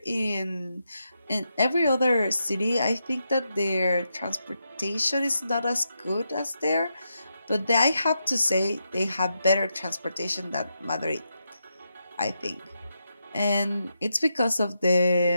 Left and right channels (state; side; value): inverted; both; correlation -0.84